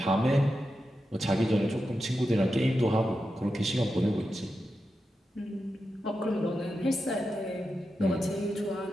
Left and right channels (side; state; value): both; normal; correlation 0.89